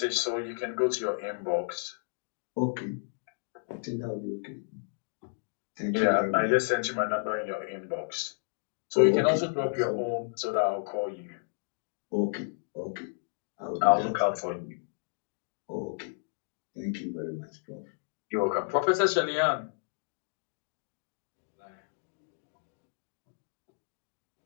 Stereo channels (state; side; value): silent; right; digital silence